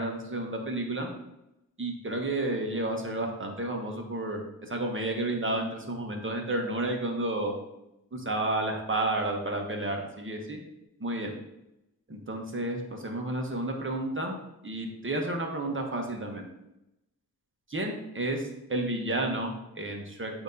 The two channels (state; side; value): normal; both; correlation 0.00